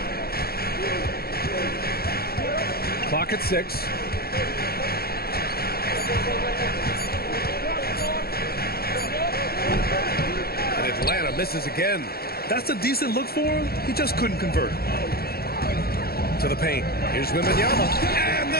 Clock at 6. Atlanta misses again. That's a decent look for him. He just couldn't convert. To the paint. Here's Wembanyama. And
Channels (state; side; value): late; right; 0.45 ms